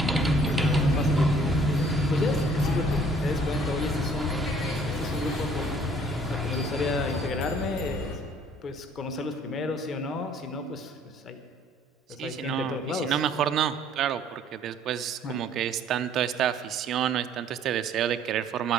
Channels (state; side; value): normal; both; correlation 0.58